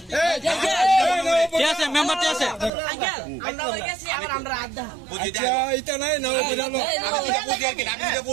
কে আছে মেম্বার কে আছে আঙ্কেল আমরা বলে গেছি আমরা আড্ডা আচ্ছা এটা নাই না বুঝালো আমি তো বুঝি আর কি আমি তো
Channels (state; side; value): drops out; left; at 2.7 s